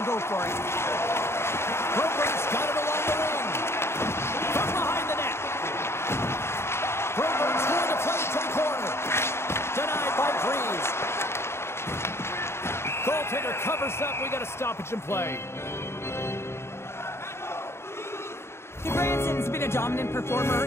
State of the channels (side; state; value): right; late; 0.12 ms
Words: go for it. Broberg's got it along the wing. From behind the net. Broberg's going to play to the corner. Denied by Breeze. Goaltender covers up. We got a stoppage in play. Branson's been a dominant performer